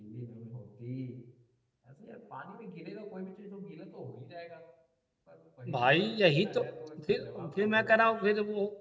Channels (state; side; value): identical; both; correlation 1.00